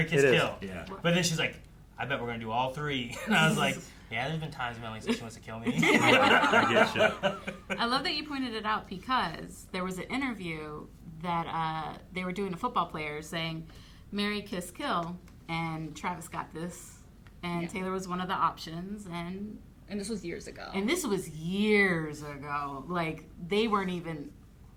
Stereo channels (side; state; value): both; identical; correlation 1.00